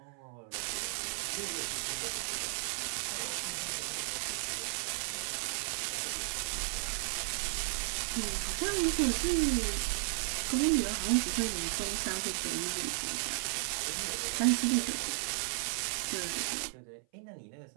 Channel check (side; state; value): left; silent; 55 dB below the other